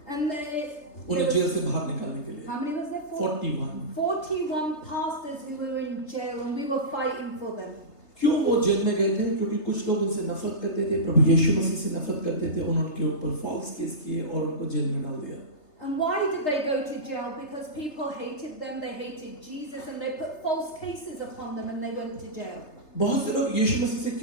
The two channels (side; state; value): right; late; 3.3 ms